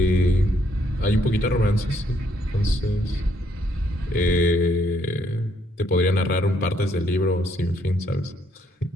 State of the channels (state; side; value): normal; both; correlation 0.71